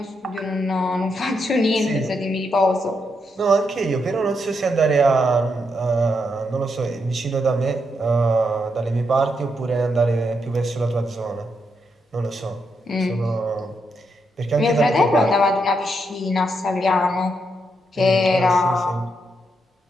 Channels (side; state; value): both; normal; correlation 0.81